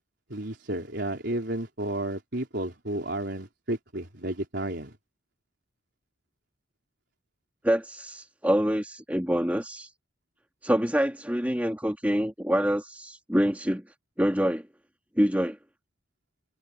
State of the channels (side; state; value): both; normal; correlation 0.84